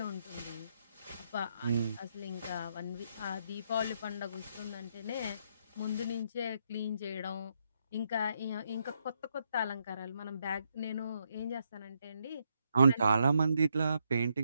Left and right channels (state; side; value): inverted; both; correlation -0.77